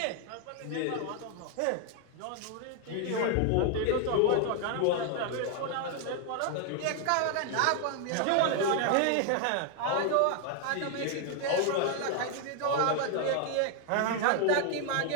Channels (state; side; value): different; both; correlation 0.00